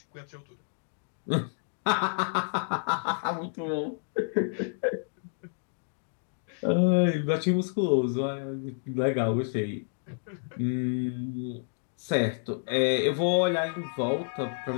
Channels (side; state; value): right; silent; digital silence